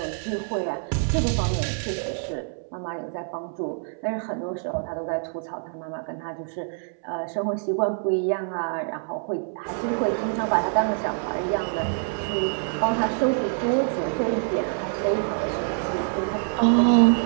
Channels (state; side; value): silent; left; 61 dB below the other